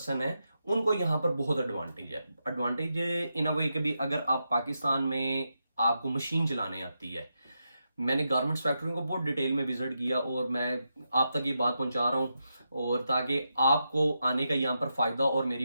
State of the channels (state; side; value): inverted; both; correlation -0.86